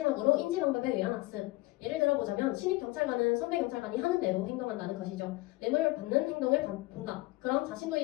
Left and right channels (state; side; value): quieter; right; 20.8 dB